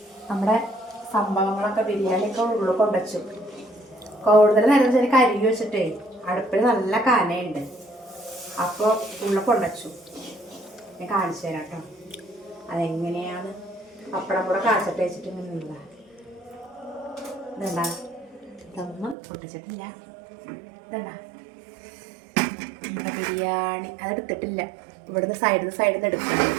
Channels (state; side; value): drops out; left; at 19.2 s